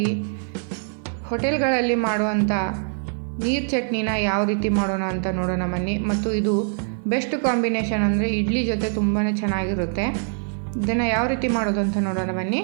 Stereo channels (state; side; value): silent; left; 63 dB below the other